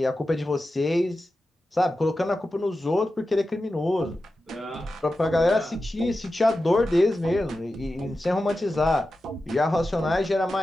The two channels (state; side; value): normal; both; correlation 0.92